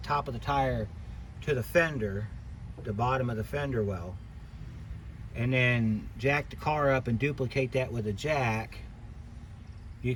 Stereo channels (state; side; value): identical; both; correlation 1.00